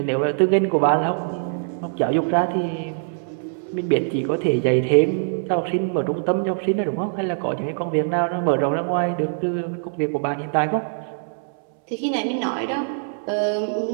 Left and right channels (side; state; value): left; silent; 64 dB below the other